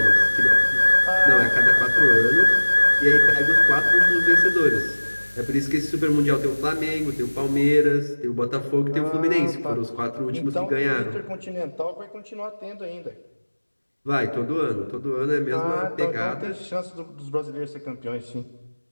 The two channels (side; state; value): both; inverted; correlation -1.00